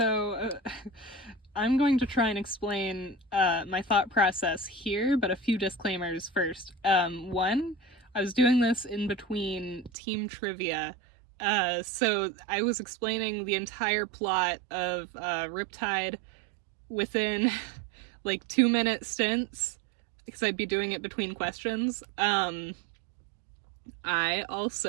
I'm going to try and explain my thought process here, but a few disclaimers first. One, I was doing this in between team trivia. So I was explaining the entire plot of Riptide within like 2-minute stints because I'd be doing it between questions. I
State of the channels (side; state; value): left; drops out; at 9.9 s